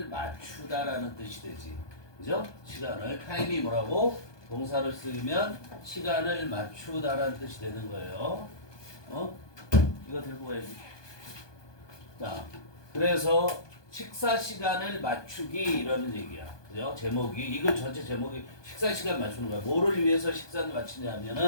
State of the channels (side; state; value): right; late; 1.2 ms